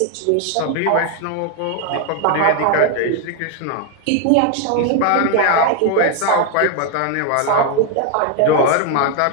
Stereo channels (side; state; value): both; different; correlation 0.01